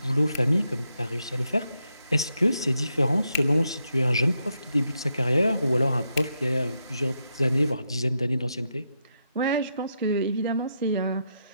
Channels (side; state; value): both; inverted; correlation -0.82